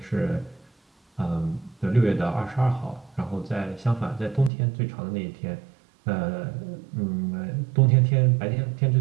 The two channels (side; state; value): left; drops out; at 4.5 s